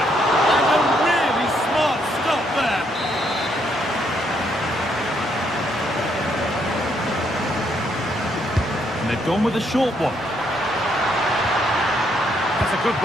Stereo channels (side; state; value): both; normal; correlation 0.73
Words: And a really smart stop there. And they've gone with a short one. That's a good